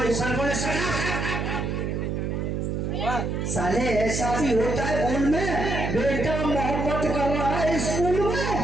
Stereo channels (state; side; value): noise; right; hum, 1 dB below the sound